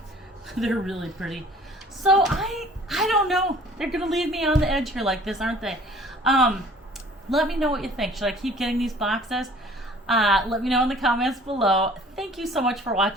They're really pretty. So I don't know. They're gonna leave me on the edge here like this, aren't they? Let me know what you think. Should I keep getting these boxes? Let me know in the comments below. Thank you so much for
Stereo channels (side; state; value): both; normal; correlation 0.51